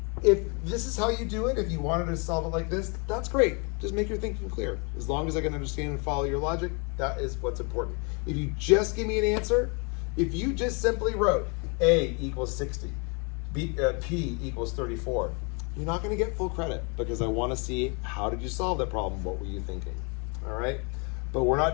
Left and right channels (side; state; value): right; quieter; 33.7 dB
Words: if this is how you do it, if you wanted to solve it like this, that's great. Just make your thinking clear. As long as I can understand and follow your logic, that is what's important. If you just give me an answer, if you just simply wrote A equals 60, P equals 34, you're not going to get full credit, because I want to see, how did you solve that problem? What were you thinking? All right, but we're